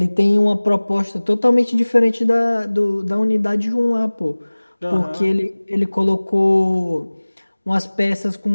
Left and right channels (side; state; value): both; inverted; correlation -1.00